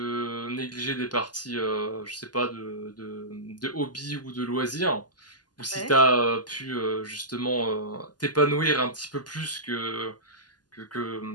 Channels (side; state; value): right; late; 0.70 ms